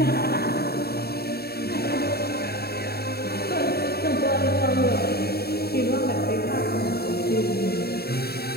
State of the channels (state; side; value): late; right; 0.46 ms